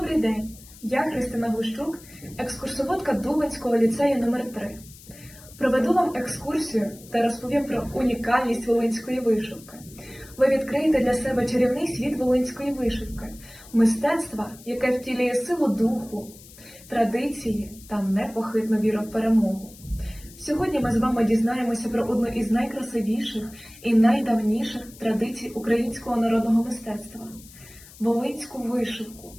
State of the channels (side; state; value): left; noise; hiss, 21 dB below the sound